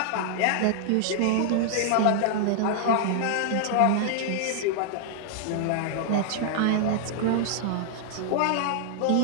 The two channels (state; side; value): different; both; correlation -0.01